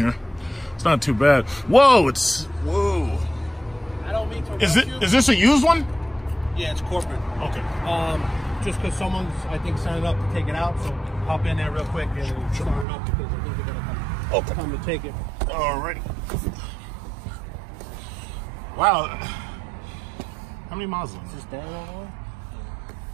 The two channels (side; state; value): left; drops out; at 12.9 s